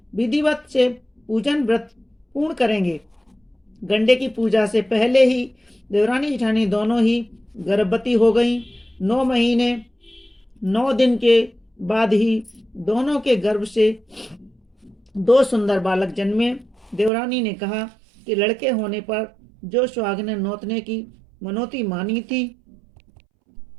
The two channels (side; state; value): left; drops out; at 17.1 s